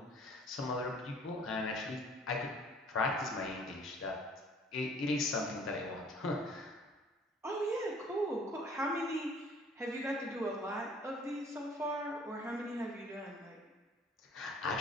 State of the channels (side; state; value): both; normal; correlation 0.54